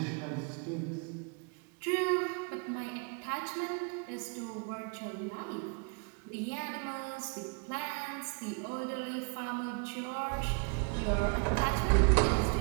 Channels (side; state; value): left; quieter; 35.2 dB